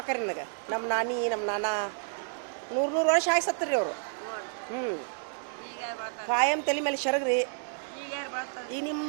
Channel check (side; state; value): left; silent; digital silence